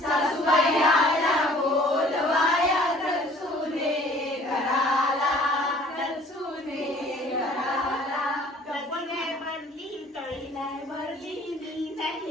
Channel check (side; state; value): both; normal; correlation 0.53